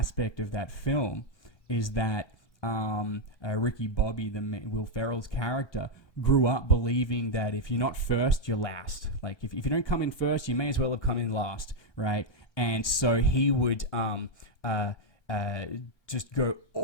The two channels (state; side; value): late; right; 1.3 ms